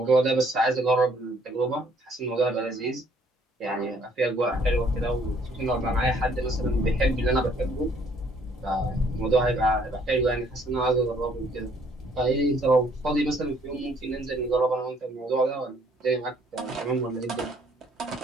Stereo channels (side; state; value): both; normal; correlation 0.63